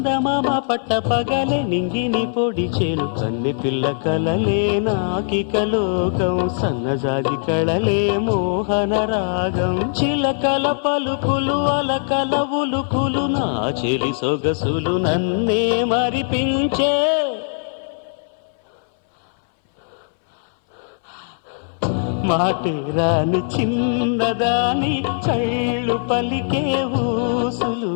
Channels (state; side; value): silent; right; 63 dB below the other